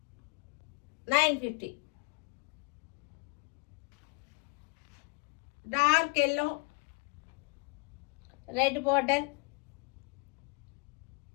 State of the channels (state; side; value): quieter; right; 32.2 dB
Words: 950. Dark yellow, red border,